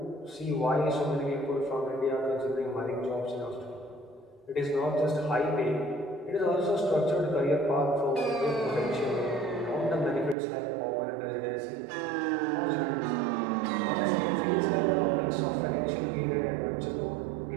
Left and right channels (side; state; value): left; drops out; at 10.4 s